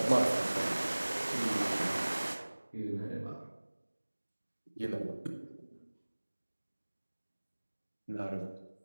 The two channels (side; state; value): both; inverted; correlation -1.00